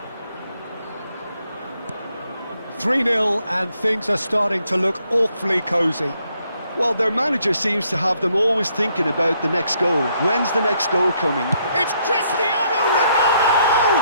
3-0 and things are starting to look awfully cosy. Well, their manager seems to have them always thinking about the next goal. When's the next goal coming? It's Cristiano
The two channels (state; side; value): inverted; both; correlation -0.72